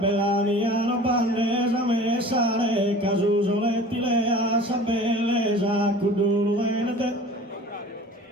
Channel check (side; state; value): both; normal; correlation 0.42